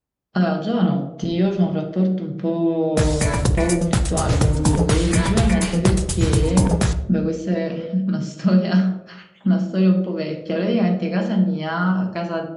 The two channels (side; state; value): both; identical; correlation 1.00